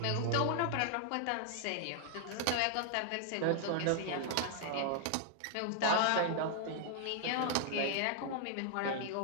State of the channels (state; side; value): different; both; correlation -0.01